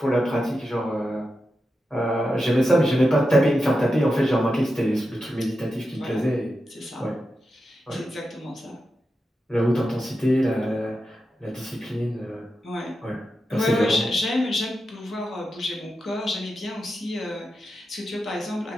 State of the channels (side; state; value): both; normal; correlation 0.89